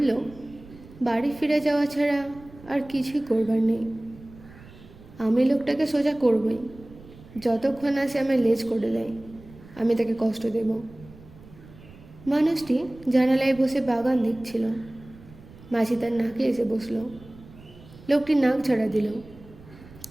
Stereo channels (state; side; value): noise; right; rumble, 21 dB below the sound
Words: বাড়ি ফিরে যাওয়া ছাড়া আর কিছুই করবার নেই। আমি লোকটাকে সোজা করবই, যতক্ষণ না সে আমায় লেজ করে দেয় আমি তাকে কষ্ট দেব। মানুষটি জানালায় বসে বাগান দেখছিল। মাঝি তার নাকে এসে বসল। লোকটি নাক ঝাড়া দিল,